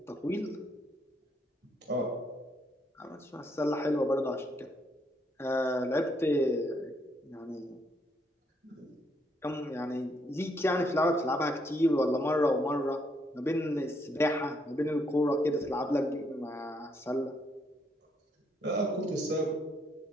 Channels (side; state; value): both; normal; correlation 0.73